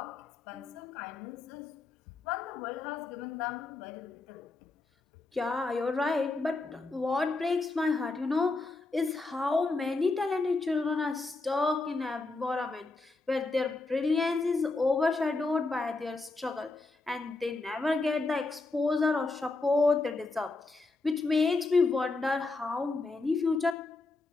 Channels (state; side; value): quieter; right; 3.5 dB